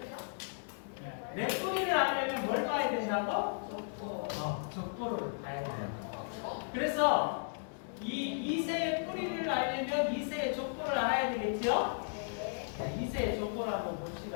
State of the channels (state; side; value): silent; right; digital silence